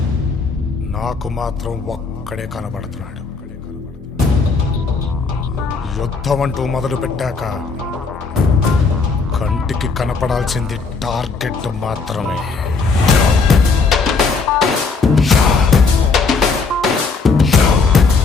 నాకు మాత్రం ఒక్కడే కనబడుతున్నాడు. యుద్ధం అంటూ మొదలు పెట్టాక కంటికి కనపడాల్సింది టార్గెట్ మాత్రమే.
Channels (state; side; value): quieter; right; 4.5 dB